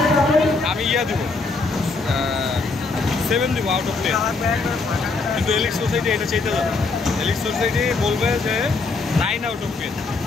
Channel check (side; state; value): right; quieter; 3.9 dB